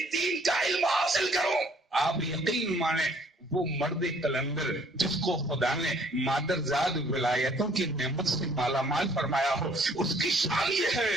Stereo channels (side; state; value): both; normal; correlation 0.59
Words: دین کا علم حاصل کروں. آپ یقین مانیں وہ مرد کلندر جس کو خدا نے مادر زاد ولایتوں کی نعمت سے مالا مال فرمایا ہو، اس کی شان یہ